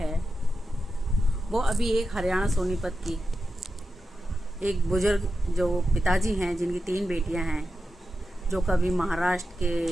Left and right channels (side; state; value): both; normal; correlation 0.90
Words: वो अभी एक हरियाणा सोनीपत की एक बुजुर्ग जो पिताजी हैं, जिनकी 3 बेटियां हैं, जो कभी महाराष्ट्र